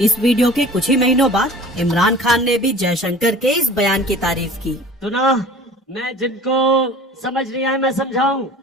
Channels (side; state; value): both; normal; correlation 0.44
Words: वीडियो के कुछ ही महीनों बाद इमरान खान ने भी जयशंकर के इस बयान की तारीफ की। सुना, मैं जिनको समझ नहीं आया मैं समझाऊं।